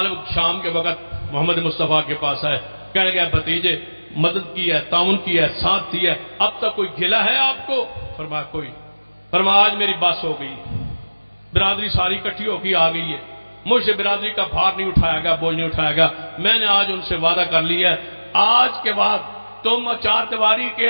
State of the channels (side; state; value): both; inverted; correlation -1.00